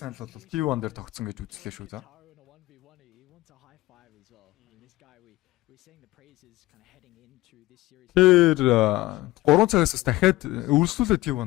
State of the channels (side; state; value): right; quieter; 18.3 dB